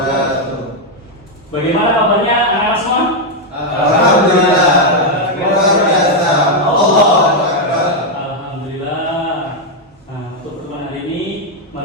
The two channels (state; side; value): normal; both; correlation 0.01